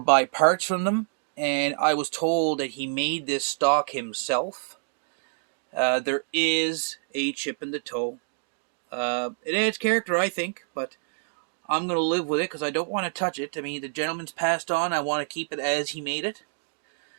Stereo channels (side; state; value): left; silent; digital silence